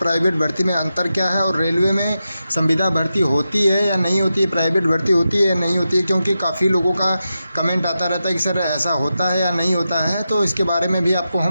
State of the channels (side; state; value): both; inverted; correlation -0.90